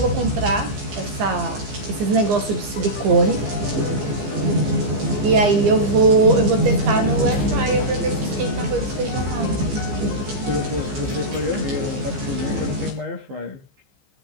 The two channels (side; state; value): left; late; 15 ms